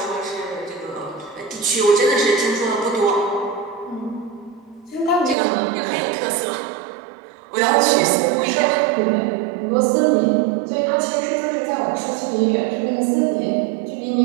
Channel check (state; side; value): drops out; left; at 5.4 s